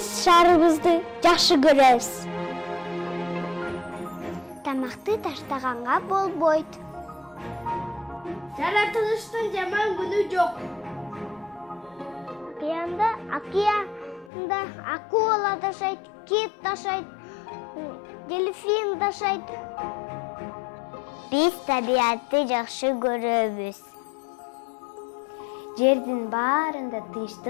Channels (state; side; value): drops out; right; at 14.3 s